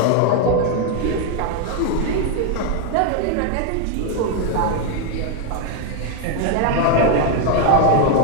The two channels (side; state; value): both; different; correlation 0.01